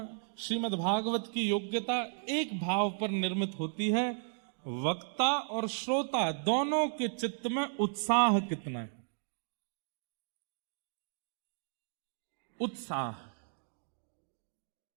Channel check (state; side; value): silent; left; digital silence